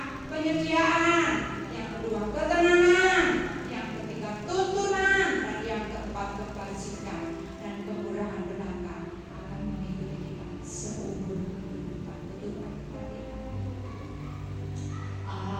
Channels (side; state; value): both; identical; correlation 1.00